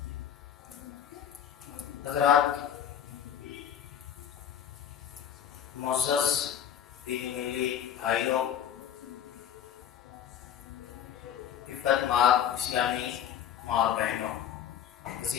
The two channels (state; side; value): quieter; right; 9.6 dB